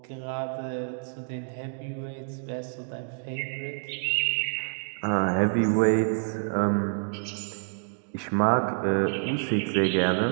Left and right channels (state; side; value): silent; left; digital silence